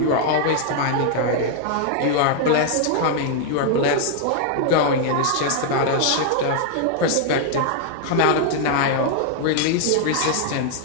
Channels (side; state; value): both; different; correlation 0.00